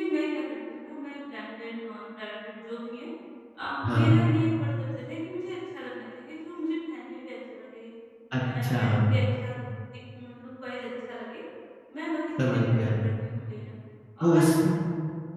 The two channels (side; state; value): both; identical; correlation 1.00